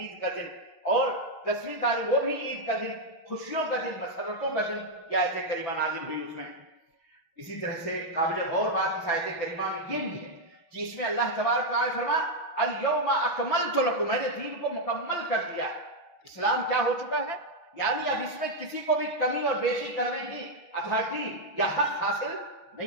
کا دن، اور 10ویں تاریخ وہ بھی عید کا دن، خوشیوں کا دن، مسرتوں کا دن یہ آیت کریمہ نازل ہوئی اس میں۔ اسی طرح سے قابل غور بات اس آیت کریمہ میں یہ بھی ہے کہ اس میں اللہ تبارک و تعالیٰ فرمایا الیوم اکملت لکم، میں نے دین کو مکمل کر دیا۔ اسلام کیا ہو چکا ہے؟ یعنی اب اس میں کسی کو بھی کمی اور بیشی کرنے کی اتھارٹی یا حق حاصل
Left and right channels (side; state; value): right; late; 6.0 ms